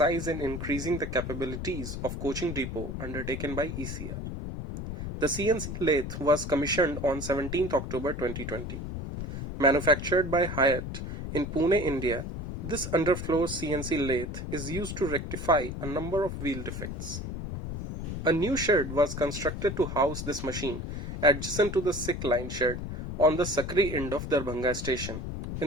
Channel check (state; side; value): noise; left; rumble, 6 dB below the sound